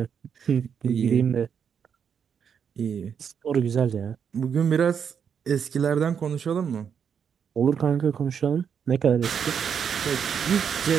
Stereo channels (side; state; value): left; quieter; 7.4 dB